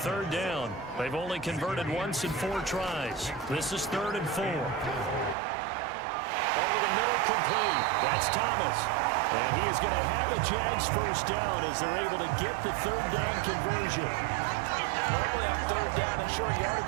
down. They've only converted once in 4 tries. This is 3rd and 4. Over the middle, complete. That's Thomas. And he is going to have a Jags first down as they're able to get the 3rd down conversion. Normally on 3rd down and short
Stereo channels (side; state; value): left; drops out; at 5.4 s